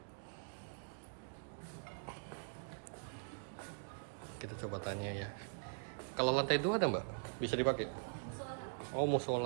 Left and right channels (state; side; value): silent; left; digital silence